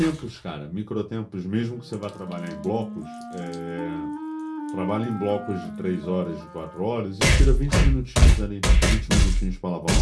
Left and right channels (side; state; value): both; identical; correlation 1.00